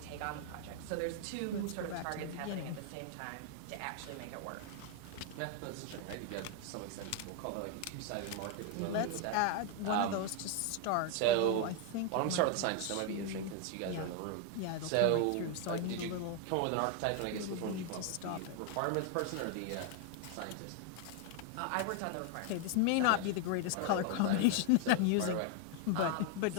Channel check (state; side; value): different; both; correlation 0.01